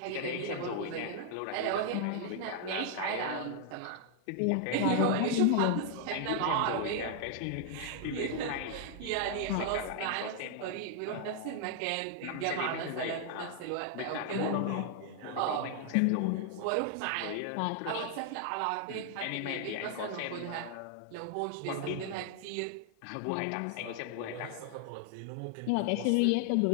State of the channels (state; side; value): different; both; correlation 0.00